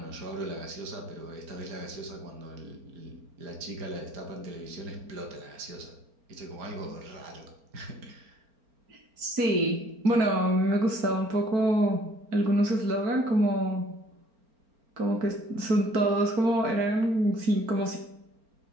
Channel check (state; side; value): late; left; 4.4 ms